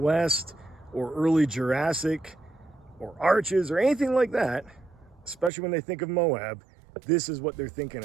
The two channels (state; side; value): drops out; left; at 5.5 s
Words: or early Jurassic or arches or anything like that, especially when they think of Moab, this is what they're